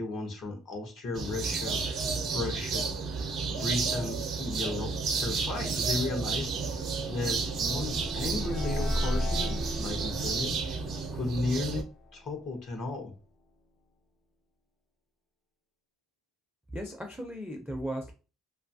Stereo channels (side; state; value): both; normal; correlation 0.69